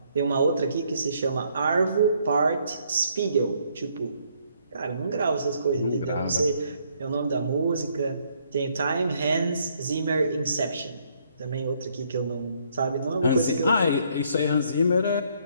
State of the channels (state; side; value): inverted; both; correlation -0.69